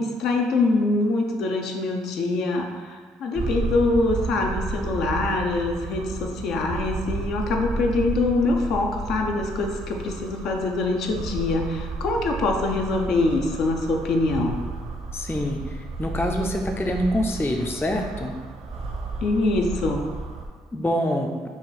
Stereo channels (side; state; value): both; normal; correlation 0.69